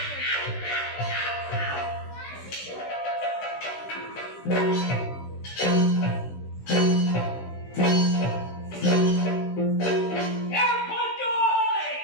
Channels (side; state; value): right; late; 16 ms